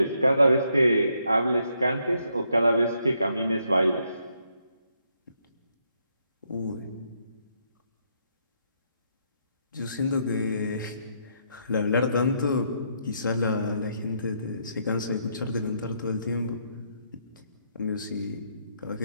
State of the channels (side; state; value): both; inverted; correlation -0.75